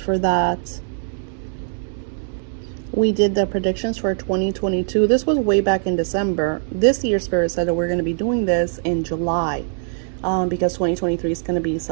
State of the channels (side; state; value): left; silent; digital silence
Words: for that. We did the predictions for 2022. This was way back in December. This year, Spirit said that we're going to be doing this in July, because 2023 is going to be